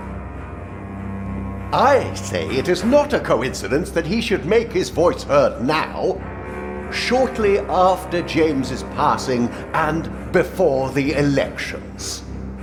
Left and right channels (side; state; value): both; identical; correlation 1.00